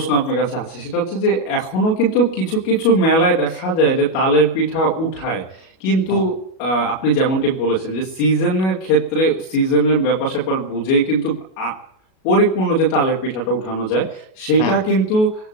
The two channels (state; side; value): late; right; 37 ms